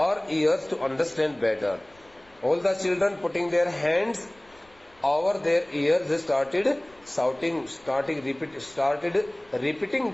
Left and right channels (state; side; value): noise; left; rumble, 30 dB below the sound